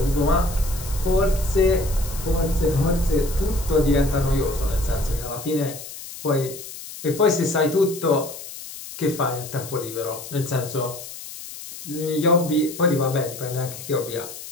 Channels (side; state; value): left; noise; hiss, 12 dB below the sound